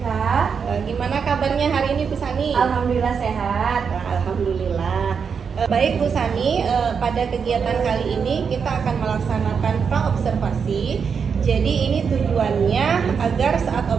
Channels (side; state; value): left; quieter; 6.3 dB